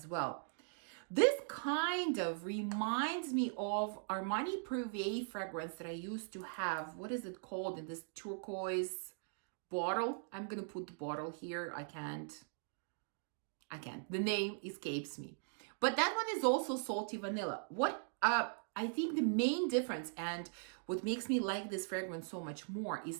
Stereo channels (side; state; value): left; silent; digital silence